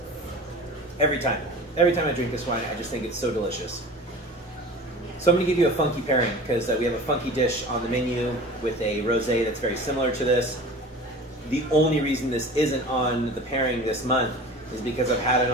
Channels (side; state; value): both; normal; correlation 0.38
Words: Every time I drink this wine, I just think it's so delicious. So I'm going to give you a funky pairing because we have a funky dish on the menu with a rosé that's very similar to this. The only reason this isn't on the pairing this month is because I've had it